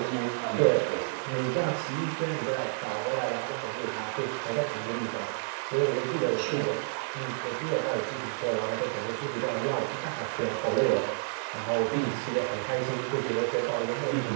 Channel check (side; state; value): left; silent; digital silence